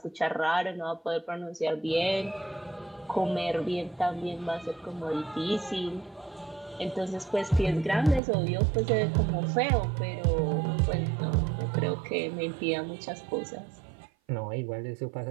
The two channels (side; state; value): left; drops out; at 8.2 s